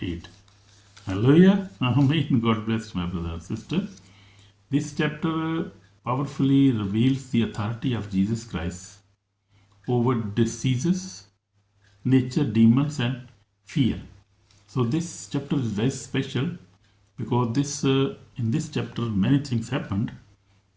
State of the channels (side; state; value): both; identical; correlation 1.00